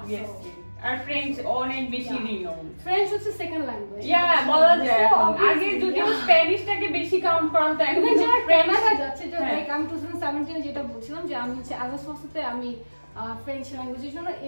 আর ফ্রেঞ্চ অনেক বেশি রিনোন। ফ্রেঞ্চ হচ্ছে সেকেন্ড ল্যাঙ্গুয়েজ। বলা যায়। আগে যদিও স্প্যানিশটাকে বেশি কাউন্ট করা হতো, এখন যারা কানাডা যাচ্ছে, যে আমি 2017 যেটা বলছিলাম যে আমি হচ্ছে আগাস্টে আমি ফ্রেঞ্চ ল্যাঙ্গুয়েজের জন্য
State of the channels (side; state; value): both; inverted; correlation -1.00